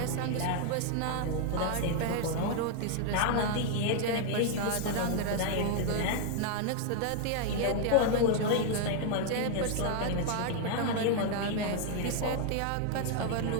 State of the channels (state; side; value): different; both; correlation 0.00